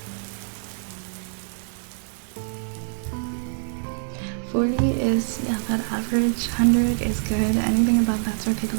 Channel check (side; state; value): left; silent; digital silence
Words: $40 is, yeah, about average. $100 is good. Anything above that's for people